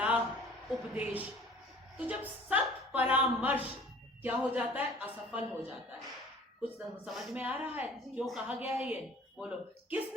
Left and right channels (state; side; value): normal; both; correlation 0.48